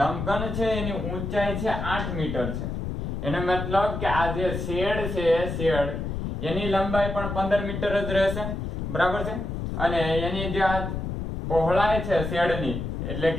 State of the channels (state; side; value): noise; left; rumble, 4 dB below the sound